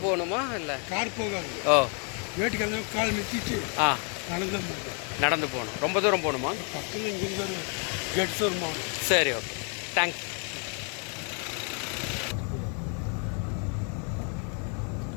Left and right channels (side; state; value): right; quieter; 39.2 dB